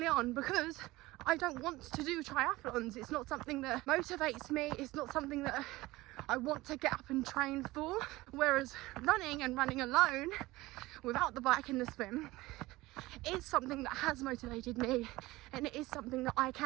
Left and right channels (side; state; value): left; quieter; 19.4 dB